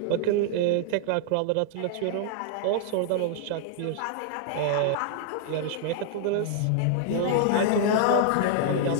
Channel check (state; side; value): different; both; correlation -0.01